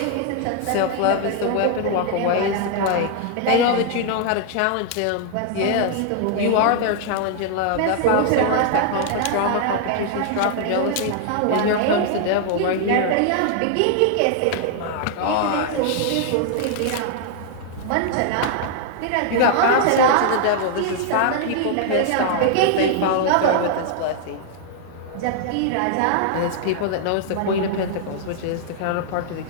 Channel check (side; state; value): both; different; correlation 0.00